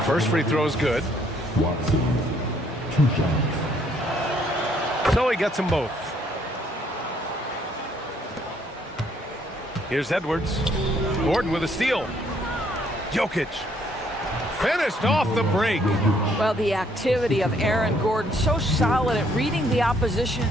first free throw is good. So he gets them both. Here's Edwards. Gordon with a steal. Jokic. Finished off the break. Well, the activity of Aaron Gordon, so solid at reading the opposition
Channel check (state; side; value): normal; both; correlation 0.67